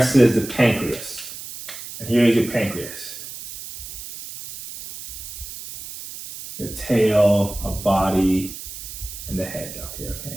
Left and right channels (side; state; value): right; noise; hiss, 11 dB below the sound